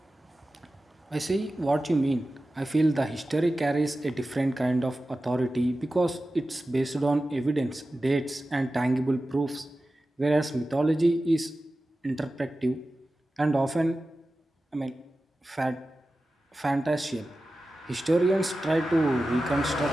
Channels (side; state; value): both; normal; correlation 0.94